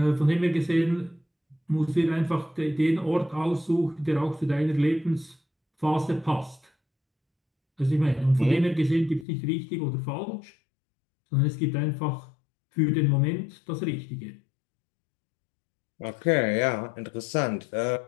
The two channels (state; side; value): drops out; right; at 9.2 s